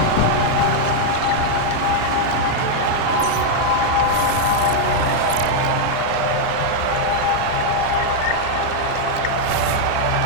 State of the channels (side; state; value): both; different; correlation -0.01